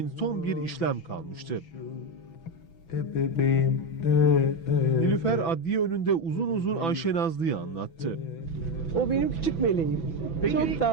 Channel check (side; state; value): right; late; 6.0 ms